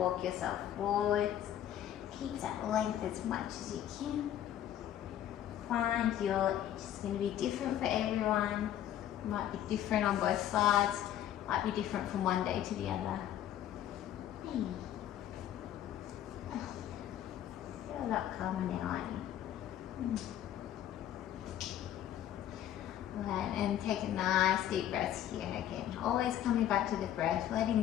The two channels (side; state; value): right; quieter; 11.4 dB